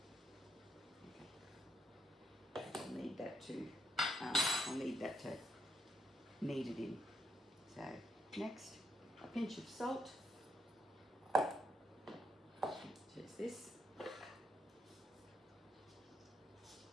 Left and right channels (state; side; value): normal; both; correlation 0.78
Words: Okay. I'll need that to knead it in. So next, a pinch of salt. Just this.